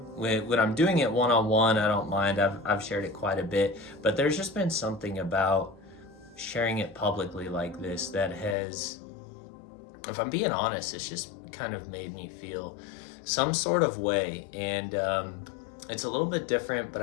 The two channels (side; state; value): right; drops out; at 8.6 s